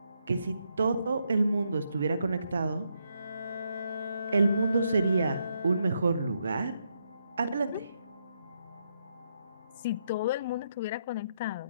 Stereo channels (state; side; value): inverted; both; correlation -0.78